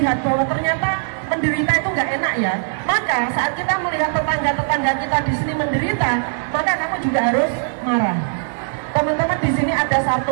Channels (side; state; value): left; silent; digital silence